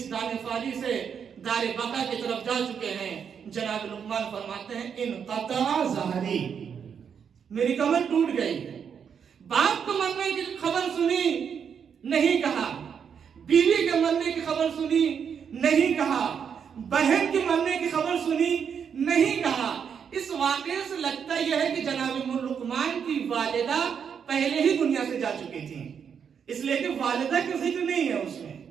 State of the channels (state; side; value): quieter; left; 7.2 dB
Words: دار فانی سے دار بقا کی طرف جا چکے ہیں۔ جناب لقمان فرماتے ہیں انقطع ظہری، میری کمر ٹوٹ گئی۔ باپ کو مرنے کی خبر سنی، نہیں کہا، بیوی کے مرنے کی خبر سنی، نہیں کہا، بہن کے مرنے کی خبر سنی، نہیں کہا۔ اس واقعے سے لگتا یہ ہے کہ جناب لقمان کی والدہ پہلے ہی دنیا سے جا چکی تھی، اس لیے کہ والدہ کا ذکر نہیں ہے اس میں۔